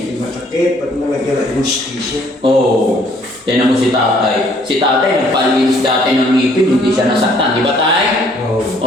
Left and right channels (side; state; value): both; normal; correlation 0.62